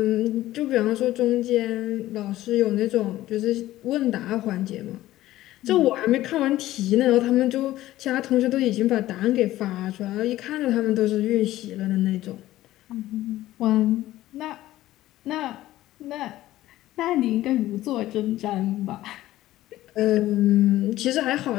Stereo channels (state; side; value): quieter; right; 15.2 dB